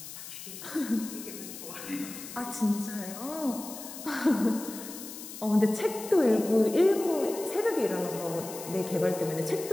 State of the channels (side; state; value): left; noise; hiss, 12 dB below the sound